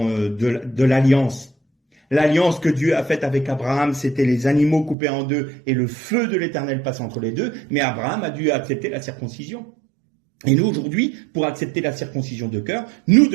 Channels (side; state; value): left; drops out; at 5.0 s